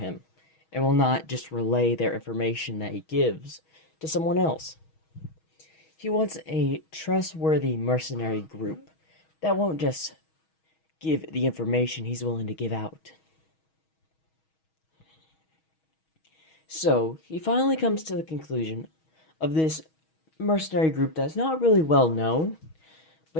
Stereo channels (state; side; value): late; right; 6.3 ms